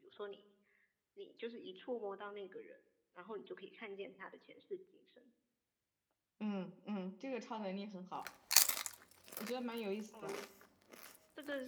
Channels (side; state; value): both; identical; correlation 1.00